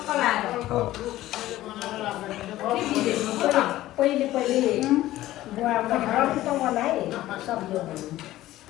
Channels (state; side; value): quieter; right; 15.3 dB